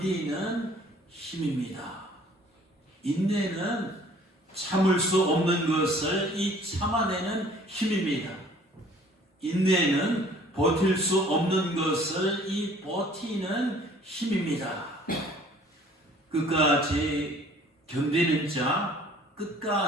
힘입니다. 인내는 참을 수 없는 것을 참아내는 힘입니다. 인내는 버틸 수 없는 것을 버티는 힘입니다. 끝까지 견디는 자,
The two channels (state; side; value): normal; both; correlation 0.54